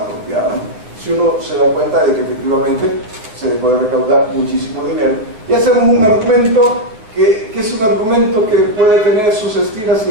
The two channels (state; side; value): late; left; 9.4 ms